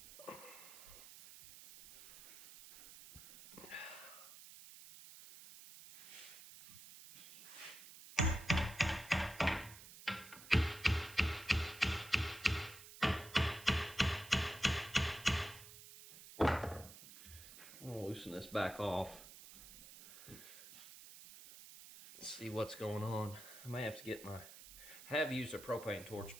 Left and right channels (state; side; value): noise; right; hiss, 16 dB below the sound